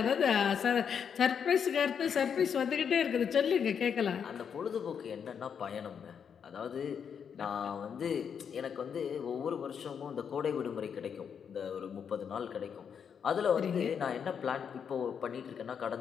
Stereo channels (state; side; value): quieter; right; 7.3 dB